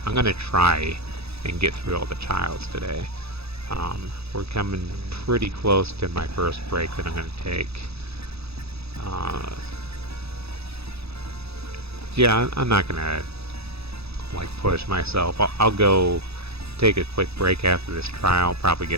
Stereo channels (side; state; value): left; late; 0.78 ms